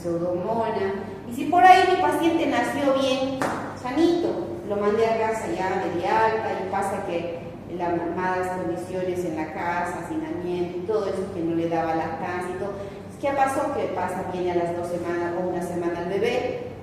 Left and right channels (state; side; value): identical; both; correlation 1.00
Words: Y si por ahí mi paciente nació bien, sanito, lo mandé a casa ya de alta y pasa que las malas condiciones en la casa, hacinamiento y todo eso que no le daba lactancia y todo. ¿Qué pasó? Que pasa, viene a las 2 semanas o una semana el bebé,